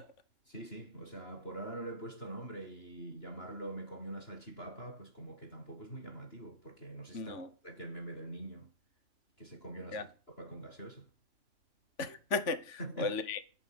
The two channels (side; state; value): right; late; 3.4 ms